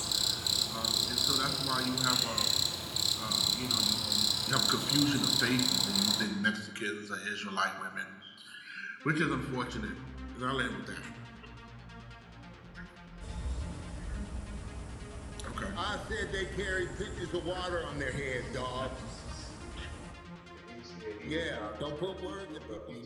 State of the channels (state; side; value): identical; both; correlation 1.00